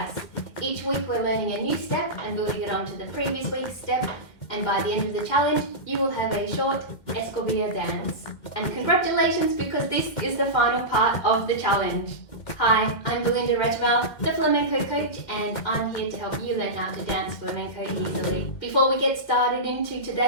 Each week we're learning a new step and building it onto the previous week's step, and by the end of the challenge you will have a short Escobilla dance. And congratulations, because this is the final part of the challenge. Hi, I'm Belinda Regmel, the flamenco coach, and I'm here to help you learn how to dance flamenco easily. Before we get started into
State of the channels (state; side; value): late; right; 2.1 ms